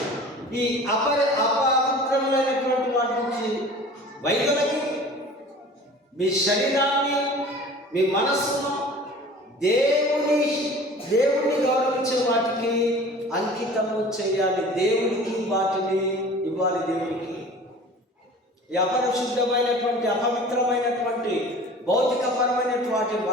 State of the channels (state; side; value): normal; both; correlation 0.43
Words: ఈ అపవిత్రములైనటువంటి వాటి నుంచి వైద్యులకి మీ శరీరాన్ని, మీ మనస్సును దేవుని గౌరవించే వాటికి అంకితము చేయాలి. దేవునికి వాటిని ఇవ్వాలి. దేవునికి ఈ అపరిశుద్ధమైనటువంటి, అపవిత్రమైనటువంటి, భౌతికపరమైనటువంటి